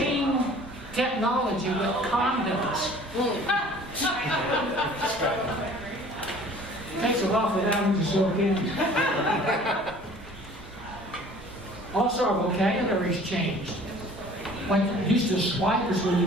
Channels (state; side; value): normal; both; correlation 0.49